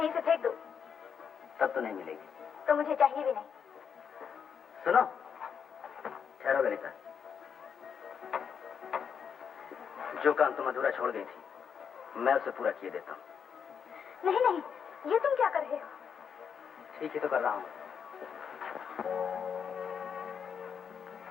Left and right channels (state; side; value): quieter; right; 7.1 dB